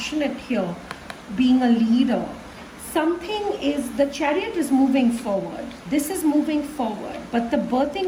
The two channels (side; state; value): both; identical; correlation 1.00